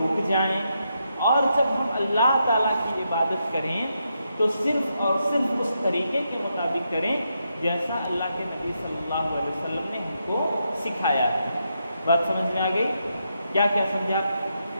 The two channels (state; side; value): inverted; both; correlation -0.82